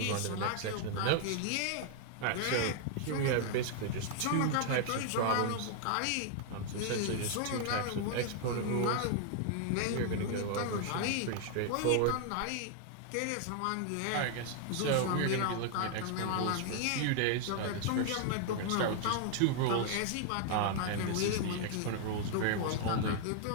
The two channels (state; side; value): different; both; correlation 0.00